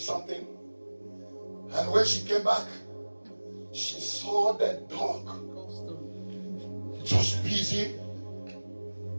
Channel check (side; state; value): both; inverted; correlation -1.00